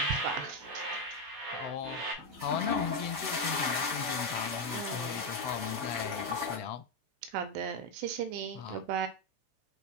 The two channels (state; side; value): late; left; 16 ms